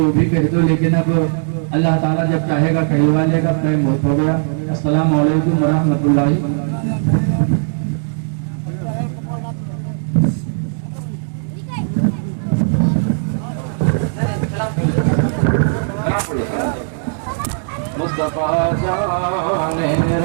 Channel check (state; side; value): silent; left; 65 dB below the other